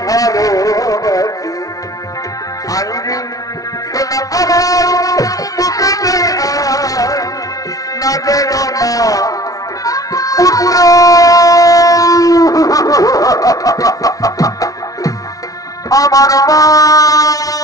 ভালোবাসি। আইনি শোনা আমার বুকে না যেন না পুত্র, আমার মা,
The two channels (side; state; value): right; late; 0.18 ms